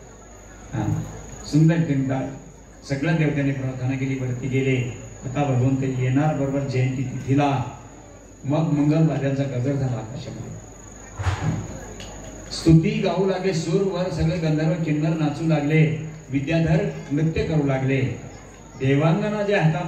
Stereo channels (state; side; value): identical; both; correlation 1.00